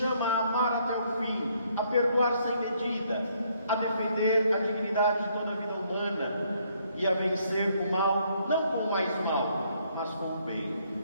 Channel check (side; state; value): both; inverted; correlation -0.69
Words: a amar até o fim, a perdoar sem medida, a defender a dignidade de toda a vida humana e a vencer o mal, não com mais mal, mas com o bem?